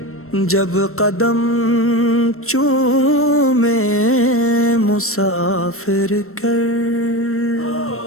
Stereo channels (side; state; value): right; late; 0.63 ms